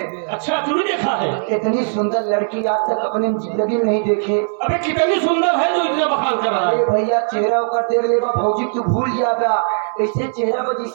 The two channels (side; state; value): left; silent; 62 dB below the other